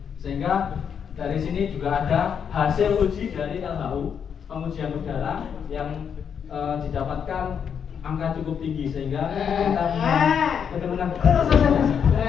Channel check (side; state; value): right; quieter; 7.5 dB